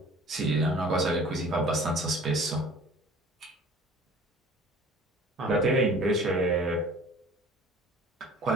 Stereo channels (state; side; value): normal; both; correlation 0.47